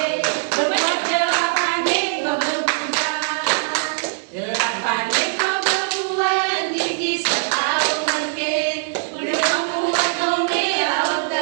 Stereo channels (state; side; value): silent; left; digital silence